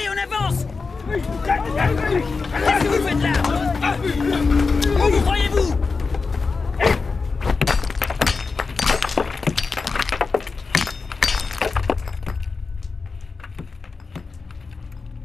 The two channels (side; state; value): right; quieter; 4.4 dB